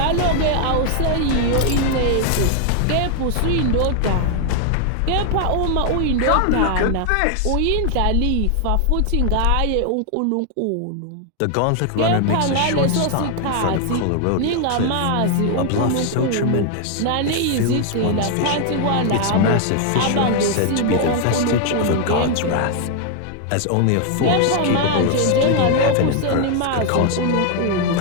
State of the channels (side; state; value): both; different; correlation 0.00